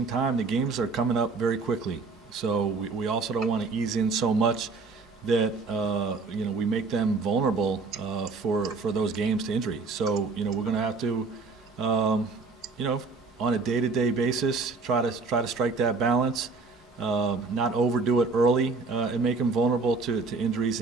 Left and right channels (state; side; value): quieter; left; 4.2 dB